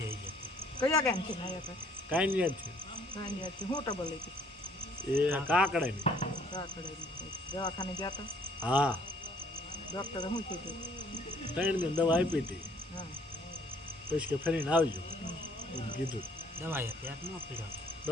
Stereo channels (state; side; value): normal; both; correlation 0.61